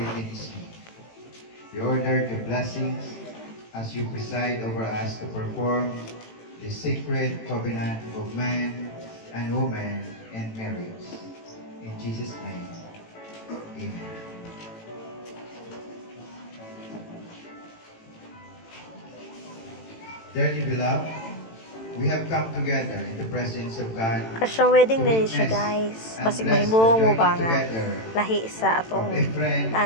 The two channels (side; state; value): right; late; 18 ms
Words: is you. We order the blessings as you preside over us to perform the sacred covenant of man and woman and marriage. In Jesus' name, amen. Dearly beloved, we have come together in the presence of God Kasya wedding din siya, guys. Basig mahimong mo ba nga lahi sa atong